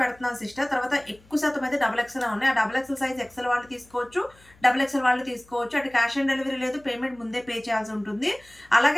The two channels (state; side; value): noise; left; hum, 28 dB below the sound